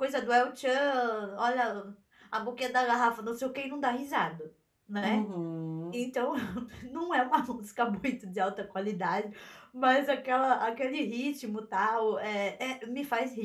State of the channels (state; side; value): identical; both; correlation 1.00